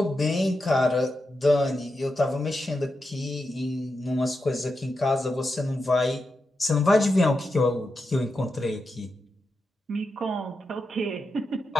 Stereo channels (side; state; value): both; normal; correlation 0.87